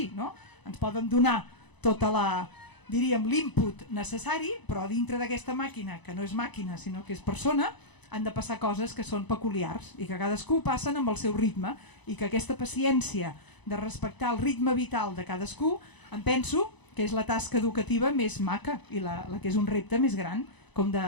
no? Ens poden donar tota diríem, l'input necessari, però dintre d'aquesta màquina, que no és màquina sinó que és persona, han de passar coses que són peculiars i que cadascú passen amb el seu ritme i que aquesta paciència de respectar el ritme vital de cadascú, em penso que és la tasca educativa més maca i la que és un repte més gran, com de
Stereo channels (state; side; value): late; right; 1.0 ms